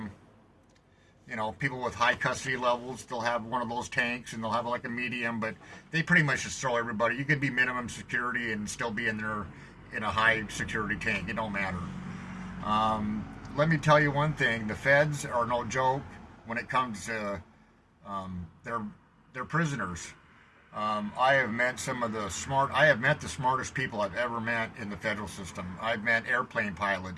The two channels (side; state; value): both; identical; correlation 1.00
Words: people with high custody levels. They'll have one of those tanks, and they'll have like a medium, but they pretty much just throw everybody. You could be minimum security and still be in there in a high security tank. It don't matter. Let me tell you one thing: the feds are no joke when it comes to they're prisoners. I have met the smartest people I've ever met in the federal system. I've met airplane